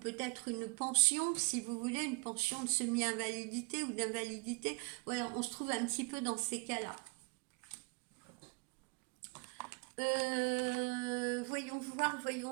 une pension, si vous voulez, une pension de semi-invalidité ou d'invalidité. Voilà, on se trouve un petit peu dans ces cas-là. Voyons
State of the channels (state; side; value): quieter; left; 31.2 dB